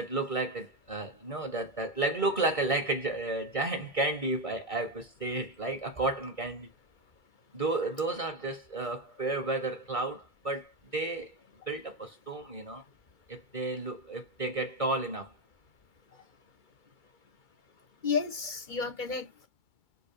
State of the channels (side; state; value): right; late; 2.3 ms